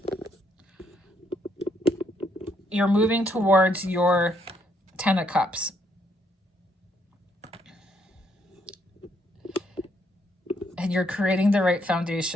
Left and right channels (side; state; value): both; normal; correlation 0.72